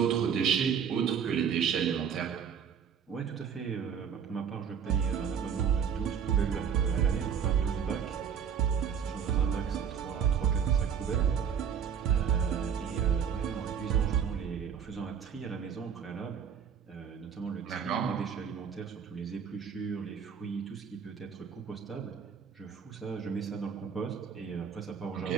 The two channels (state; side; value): quieter; left; 7.5 dB